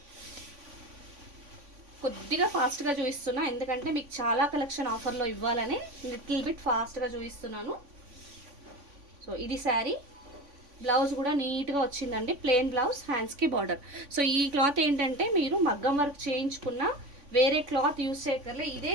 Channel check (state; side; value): late; left; 3.5 ms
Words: కొద్దిగా ఫాస్ట్గా చూపిస్తున్నా ఎందుకంటే మీకు చాలా కలెక్షన్ ఆఫర్లో ఇవ్వాలని లిటిల్ బిట్ ఫాస్ట్గా చూపిస్తున్నాను. సో ఇది శారీ. బ్లౌజ్ కూడా నీట్గా వచ్చిందండి, ప్లెయిన్ బ్లౌజ్, హ్యాండ్స్కి బార్డర్. సో ఈ క్లాత్ ఏంటంటే మీరు మగ్గం వర్క్ చేయించుకున్న వేరే క్లాత్ యూస్ చేయక్కర్లే, ఇదే